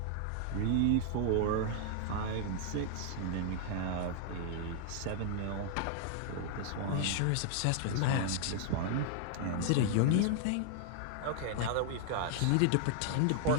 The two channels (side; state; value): both; different; correlation 0.00